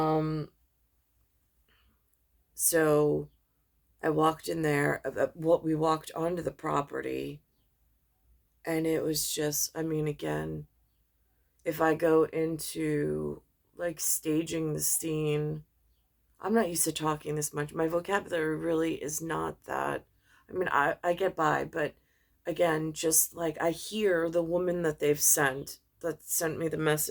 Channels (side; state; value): both; identical; correlation 1.00